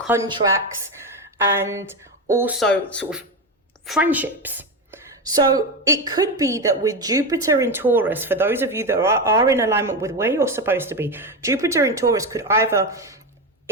and also sort of friendships. So it could be that with Jupiter in Taurus, for those of you that are in alignment with where you're supposed to be, Jupiter in Taurus could either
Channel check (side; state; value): both; normal; correlation 0.16